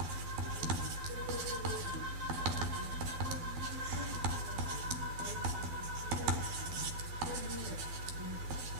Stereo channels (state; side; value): late; left; 12 ms